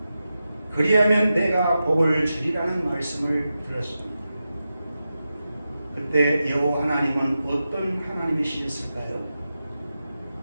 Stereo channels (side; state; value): both; inverted; correlation -0.91